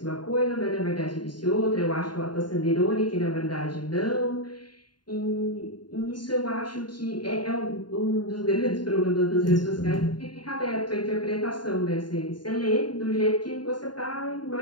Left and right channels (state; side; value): late; right; 0.71 ms